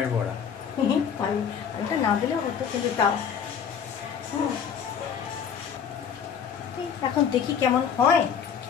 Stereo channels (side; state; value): right; quieter; 7.5 dB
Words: বড়া। আলুটা না দিলেও হতো, কিন্তু তাও এখন দেখি কেমন হয়।